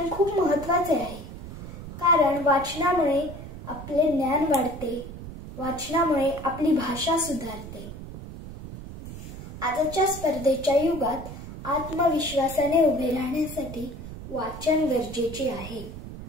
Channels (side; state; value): right; noise; rumble, 11 dB below the sound